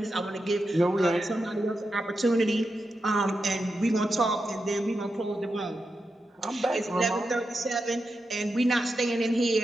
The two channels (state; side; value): normal; both; correlation 0.88